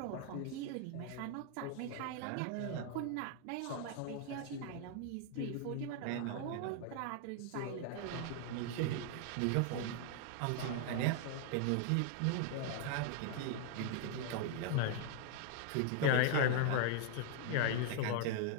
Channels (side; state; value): both; different; correlation -0.01